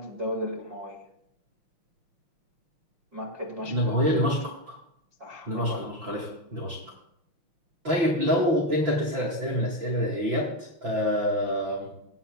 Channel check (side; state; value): left; late; 6.0 ms